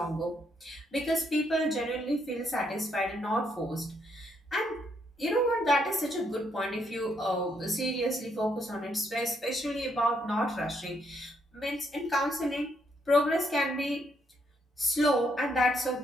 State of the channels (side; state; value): both; normal; correlation 0.74